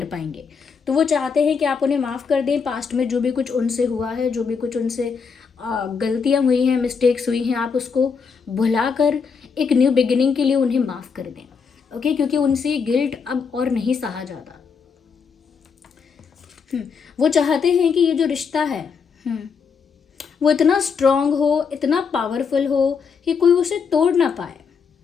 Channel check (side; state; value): right; quieter; 5.8 dB